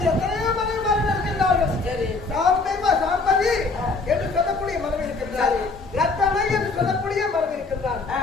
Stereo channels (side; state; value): right; quieter; 3.8 dB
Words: எத்தனையோ மனைவிமார்கள் இருக்கின்றார்கள். சாம்பேமா சாம்பவி என்று சொல்லக்கூடிய மனைவி இருக்கின்றார். ரத்தமை என்று சொல்லக்கூடிய மனைவி இருக்கின்றார்.